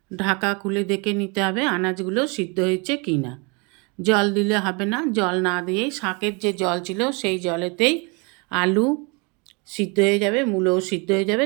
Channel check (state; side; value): quieter; left; 31.3 dB